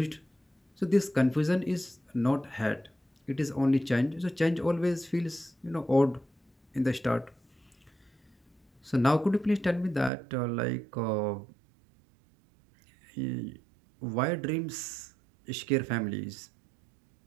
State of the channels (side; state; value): left; drops out; at 10.1 s